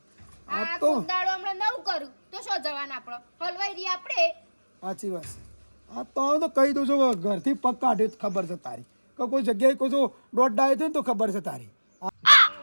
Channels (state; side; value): inverted; both; correlation -1.00